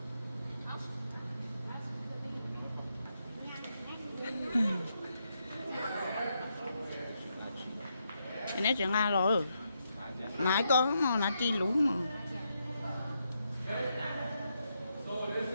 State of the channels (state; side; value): inverted; both; correlation -0.81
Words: Cái này chuyện Nga rồi. Nãy có mà nãy chi lú mà. So this